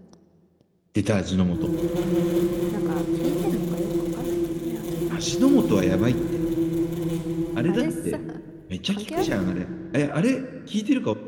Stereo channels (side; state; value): both; identical; correlation 1.00